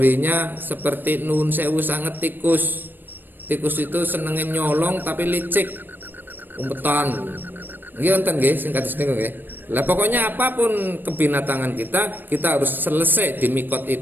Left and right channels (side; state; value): left; late; 0.093 ms